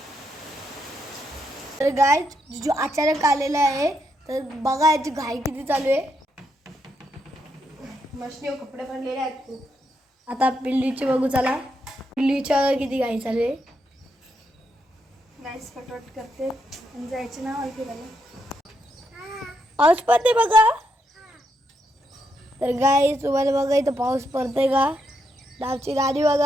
तर गाईज जो अचानक आलेला आहे तर बघा याची घाई किती चालू आहे. मशनीवर कपडे भरलेले आहेत खूप. आता पिल्लीची बघू चला. पिल्लीच्या किती घाई चालू आहे. नाईस फटफट करते आणि जायचे ना मला फिरायला. पाऊस पडते बघा. तर गाईज तुम्हाला बघा इथं पाऊस पडतोय का. डावची गाडी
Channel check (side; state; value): both; normal; correlation 0.80